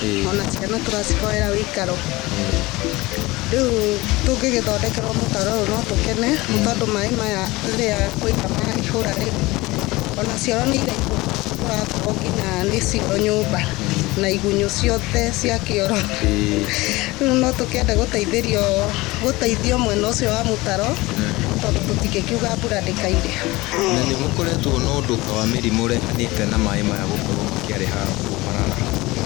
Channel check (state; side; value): quieter; right; 21.0 dB